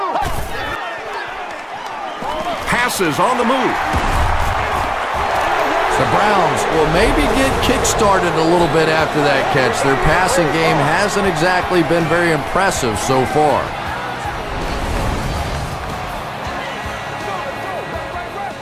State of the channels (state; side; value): identical; both; correlation 1.00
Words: Passes on the move. The Browns will maybe get kick-started a little bit after that catch. Their passing game hasn't exactly been very impressive so far.